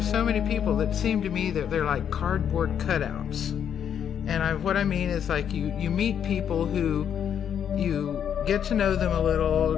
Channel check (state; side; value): quieter; right; 8.6 dB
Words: many people that seem to me that they're like cardboard cutouts. And what I mean is, like, you meet people who you get to know them a little,